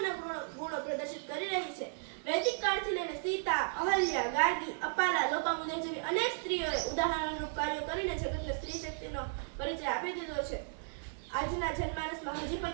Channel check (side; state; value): left; silent; 55 dB below the other